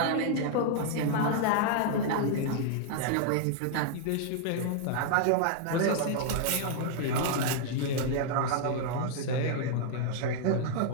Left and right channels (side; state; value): both; different; correlation -0.01